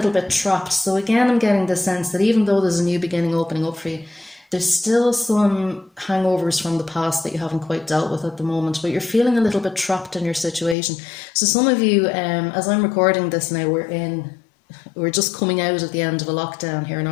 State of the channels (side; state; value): right; drops out; at 10.8 s